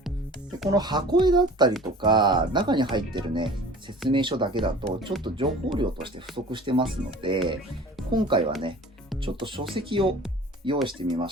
でこの箱絵だったりとか中に入ってるね説明書だけだとちょっと情報量として不足してますので、今回はねちょっと書籍を用意してみま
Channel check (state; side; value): normal; both; correlation 0.44